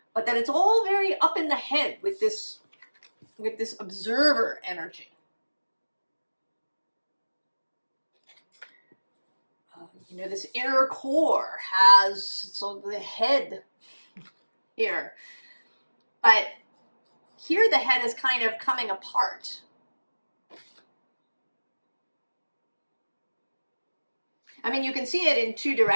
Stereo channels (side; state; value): both; inverted; correlation -1.00